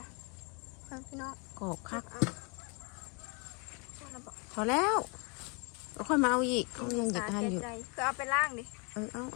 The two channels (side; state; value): right; quieter; 33.1 dB